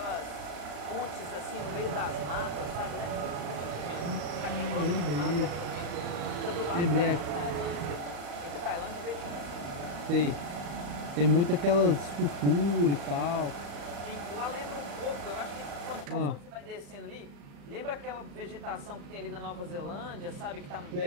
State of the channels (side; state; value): left; late; 35 ms